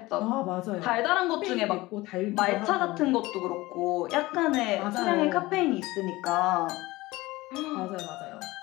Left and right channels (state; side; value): quieter; right; 19.9 dB